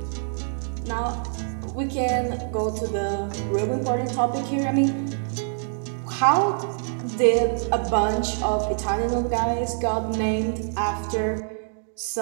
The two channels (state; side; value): silent; left; digital silence